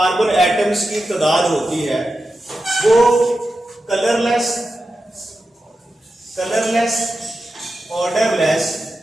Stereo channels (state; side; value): normal; both; correlation 0.91